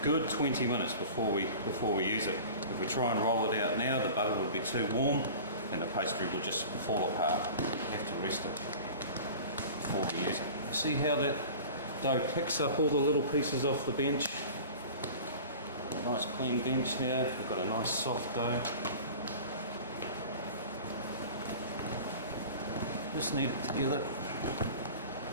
good 20 minutes before we use it. If we try and roll it out now, the butter would be too warm and the pastry would just fall apart. You have to rest it before we use it. See how that dough picks up all the little pieces off the bench? A nice clean bench now. We've got a nice soft dough. Just knead it together.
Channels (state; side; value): inverted; both; correlation -0.39